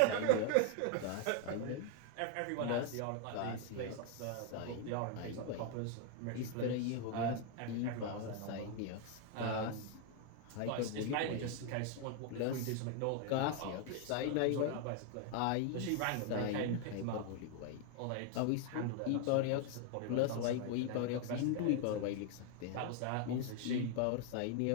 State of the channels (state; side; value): different; both; correlation 0.00